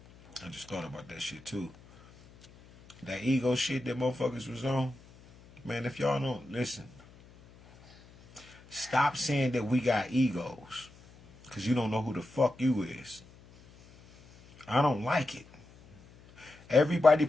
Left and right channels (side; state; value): left; noise; hum, 24 dB below the sound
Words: I just thought about that shit too. That ego shit that motherfuckers was on. Man, if y'all don't listen, stop saying that we got egos. Because you don't know who the fuck you is. I don't like it. Everybody